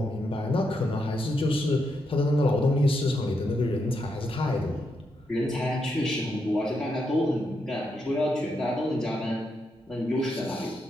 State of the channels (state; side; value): normal; both; correlation 0.82